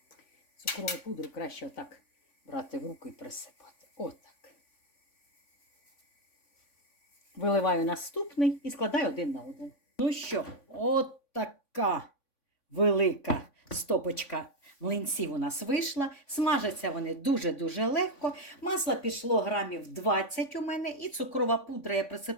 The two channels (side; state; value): right; late; 3.5 ms